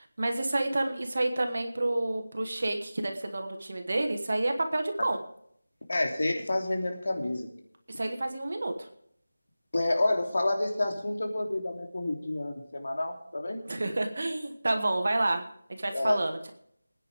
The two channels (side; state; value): both; inverted; correlation -0.96